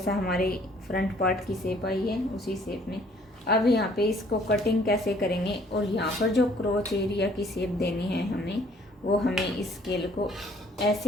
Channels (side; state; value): both; normal; correlation 0.60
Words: हमारे फ्रंट पार्ट की शेप आई है उसी शेप में। अब यहाँ पे इसको कटिंग कैसे करेंगे, और यहाँ पर जो क्रोच एरिया की शेप देनी है हमें, वो हमें इस स्केल को